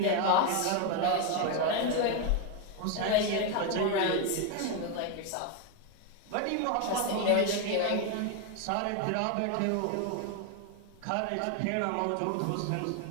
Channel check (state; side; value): different; both; correlation 0.01